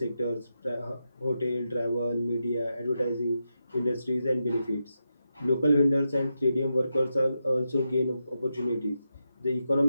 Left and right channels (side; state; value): both; inverted; correlation -0.87